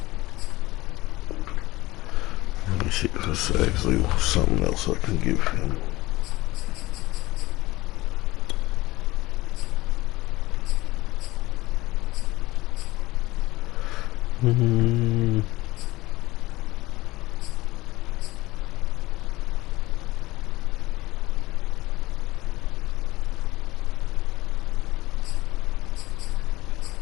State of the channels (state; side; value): quieter; right; 19.1 dB